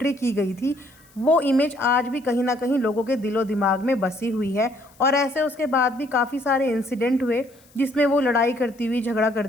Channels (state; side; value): noise; left; hiss, 29 dB below the sound